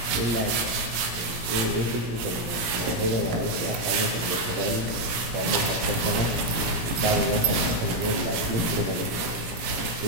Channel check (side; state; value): left; late; 17 ms